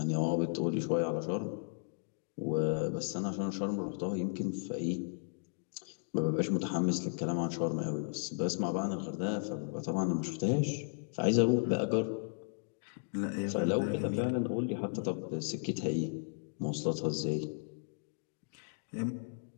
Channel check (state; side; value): silent; right; digital silence